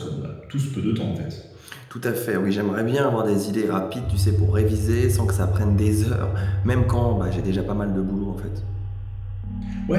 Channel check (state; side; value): identical; both; correlation 1.00